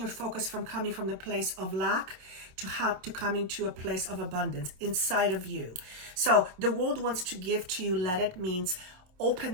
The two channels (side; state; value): left; late; 27 ms